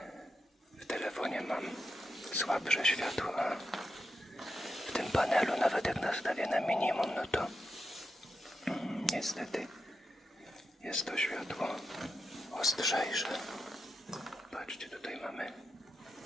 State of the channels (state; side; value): normal; both; correlation 0.86